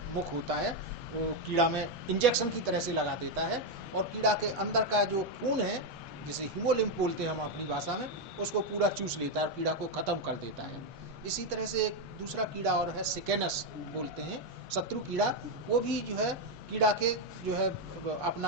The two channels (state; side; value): normal; both; correlation 0.03